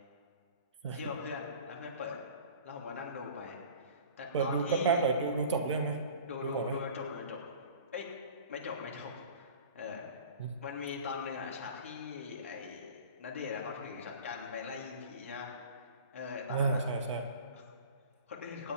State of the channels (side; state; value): both; inverted; correlation -0.41